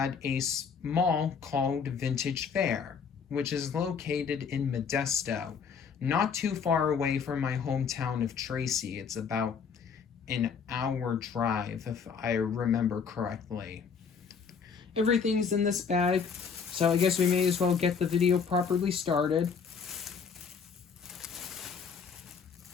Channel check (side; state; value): right; quieter; 6.2 dB